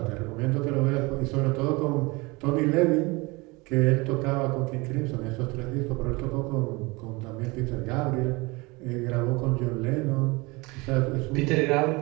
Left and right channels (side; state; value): left; quieter; 25.0 dB